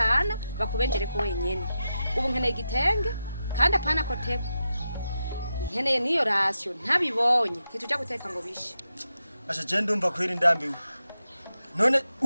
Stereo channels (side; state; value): both; inverted; correlation -0.88